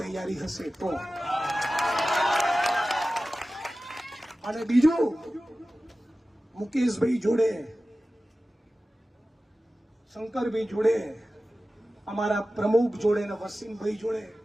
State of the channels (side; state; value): both; normal; correlation 0.95